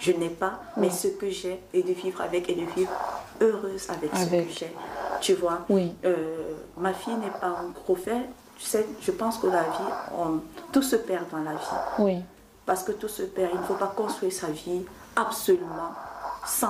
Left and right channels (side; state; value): both; identical; correlation 1.00